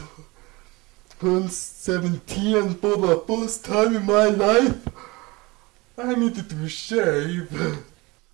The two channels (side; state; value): left; quieter; 23.8 dB